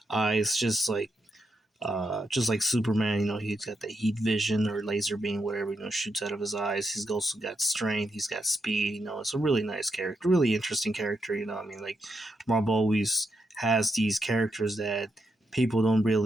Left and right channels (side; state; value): both; normal; correlation 0.82